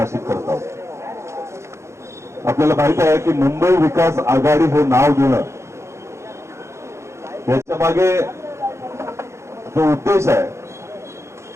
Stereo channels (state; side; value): late; left; 0.13 ms